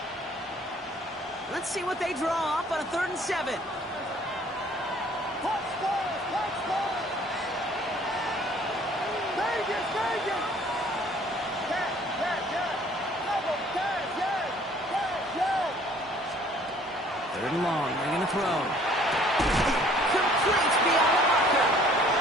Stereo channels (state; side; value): normal; both; correlation 0.56